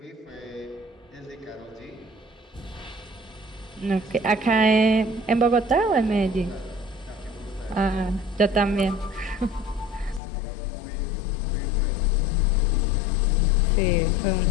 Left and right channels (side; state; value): right; drops out; at 10.2 s